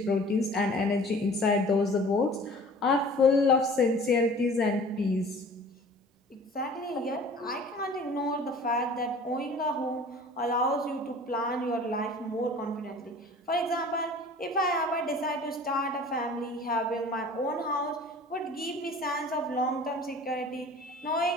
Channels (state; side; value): normal; both; correlation 0.46